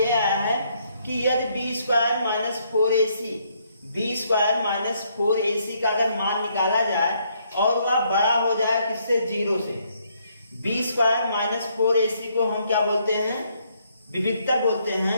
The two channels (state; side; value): inverted; both; correlation -0.71